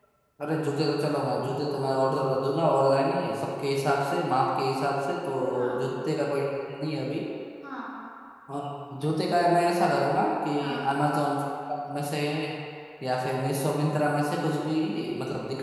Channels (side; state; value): both; identical; correlation 1.00